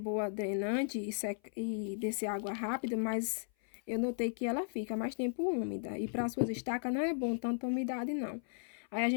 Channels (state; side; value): silent; right; 54 dB below the other